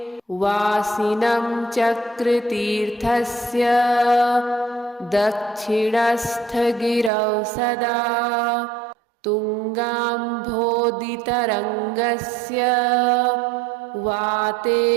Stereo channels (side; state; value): left; drops out; at 7.1 s